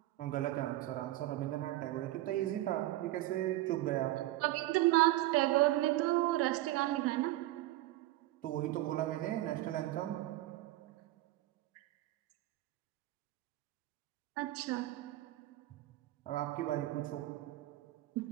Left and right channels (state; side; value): quieter; left; 16.6 dB